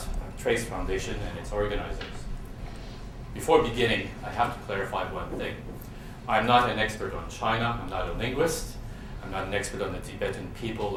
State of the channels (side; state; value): both; identical; correlation 1.00